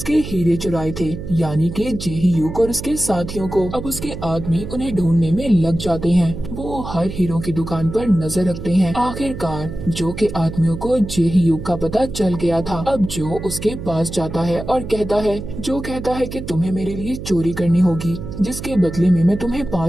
हीरे चुराए थे, यानी कि जेही युग और उसके साथियों को। अब उसके आदमी उन्हें ढूंढने में लग जाते हैं। वो हर हीरो की दुकान पर नजर रखते हैं। आखिरकार जो के आदमियों को जेही युग का पता चल गया था। अब जो उसके पास जाता है और कहता है कि तुम्हें मेरे लिए चोरी करनी होगी, जिसके बदले में मैं तुम्हें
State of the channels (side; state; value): right; noise; hum, 9 dB below the sound